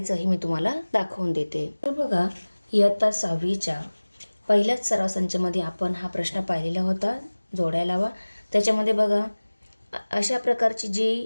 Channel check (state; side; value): inverted; both; correlation -1.00